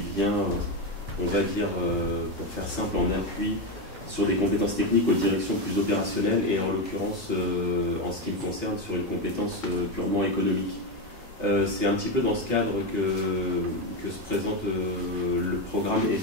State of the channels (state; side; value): normal; both; correlation 0.11